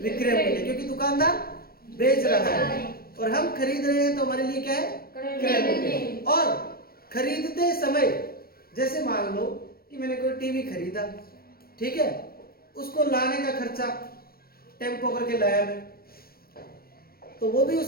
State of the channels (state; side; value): late; right; 0.44 ms